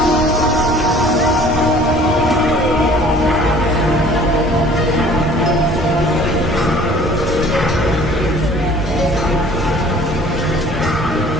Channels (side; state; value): both; normal; correlation 0.51